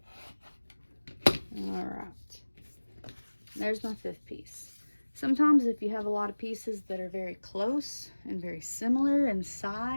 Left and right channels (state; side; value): inverted; both; correlation -1.00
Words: Alright. There's my 5th piece. Sometimes if you have a lot of pieces that are very close and very similar in